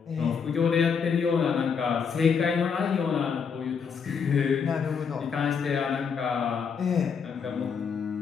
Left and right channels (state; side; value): quieter; right; 6.3 dB